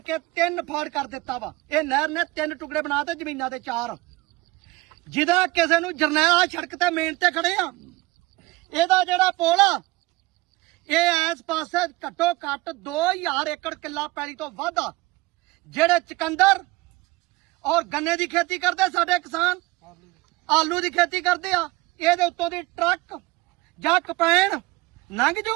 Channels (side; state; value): left; quieter; 21.3 dB